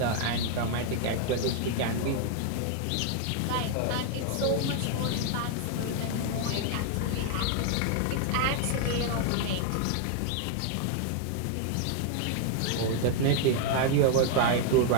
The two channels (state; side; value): different; both; correlation 0.00